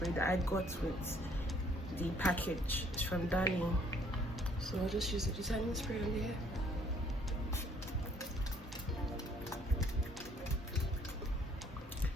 that I got with the package. It's from Darling. So I'll just use the detangling spray on the hair.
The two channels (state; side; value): normal; both; correlation 0.62